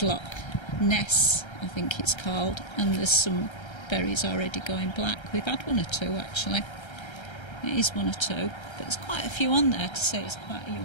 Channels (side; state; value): right; late; 1.3 ms